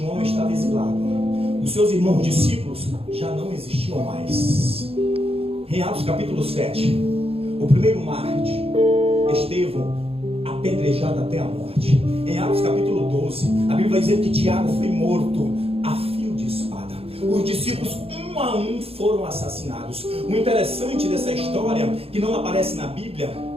estava exilado. Os seus irmãos discípulos já não existiam mais. Em Atos capítulo 7, o primeiro mártir, Estevão, apedrejado até a morte. Em Atos capítulo 12, a Bíblia vai dizer que Tiago foi morto a fio de espada. Os discípulos, um a um, foram assassinados. O interessante dessa história, que não aparece na Bíblia,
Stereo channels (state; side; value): late; left; 0.28 ms